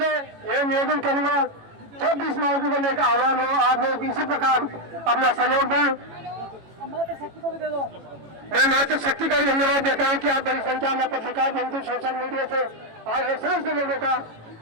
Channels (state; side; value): late; left; 18 ms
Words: यह निवेदन करूंगा, जब भी इस मौके को लेकर आह्वान हो, आप लोग इसी प्रकार अपना सहयोग दें। मैं मातृ शक्ति का भी धन्यवाद देता हूँ कि आप बड़ी संख्या में पत्रकार बंधु सोशल मीडिया से आए समस्त लोगों का